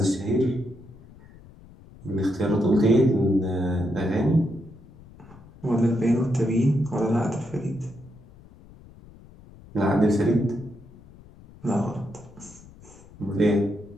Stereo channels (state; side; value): noise; left; rumble, 22 dB below the sound